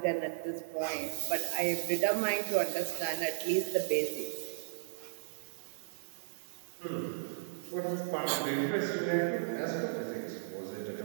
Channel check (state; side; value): silent; left; 54 dB below the other